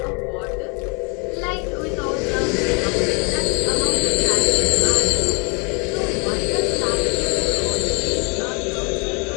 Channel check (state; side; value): quieter; right; 32.8 dB